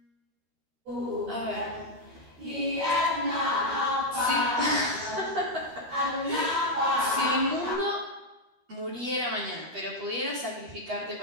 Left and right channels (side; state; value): left; late; 13 ms